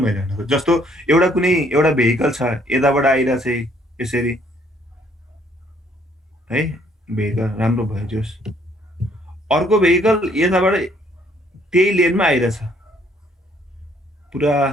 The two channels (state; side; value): normal; both; correlation 0.65